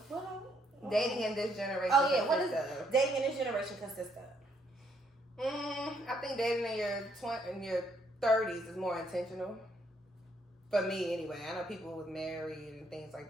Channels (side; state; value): both; normal; correlation 0.71